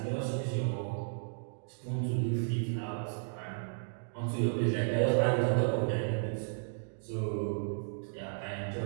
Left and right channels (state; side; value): silent; left; digital silence